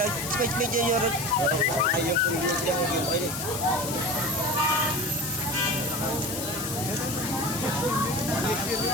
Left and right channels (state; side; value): noise; left; hiss, 6 dB below the sound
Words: ្យស្ពេចពេចយករត់ហើយយើងគុំយើងអីនេះ